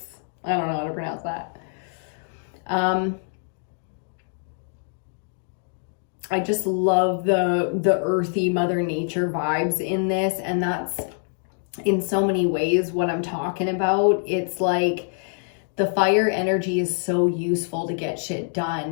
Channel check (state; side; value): silent; right; 62 dB below the other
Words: I don't know how to pronounce that. I just love the earthy Mother Nature vibes in this, and that's in so many ways what I'm talking about. It's like the fire energy is so useful to get shit